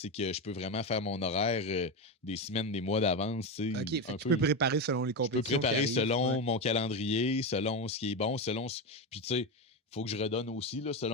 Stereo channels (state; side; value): normal; both; correlation 0.14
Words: que je peux vraiment faire mon horaire des semaines, des mois d'avance. OK, fait que tu peux préparer selon les compétitions. Je peux préparer selon mon calendrier, selon ce qui est bon, Puis tu sais, faut que je redonne aussi, là,